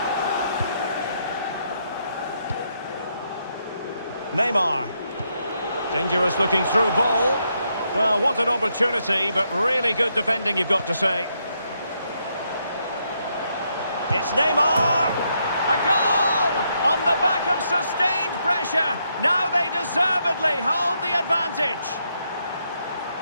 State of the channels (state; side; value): inverted; both; correlation -0.78